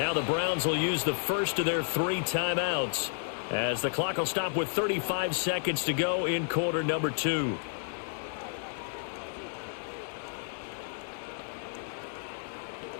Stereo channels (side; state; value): right; silent; digital silence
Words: the Browns will use the first of their 3 timeouts as the clock will stop with 35 seconds to go in quarter number 2.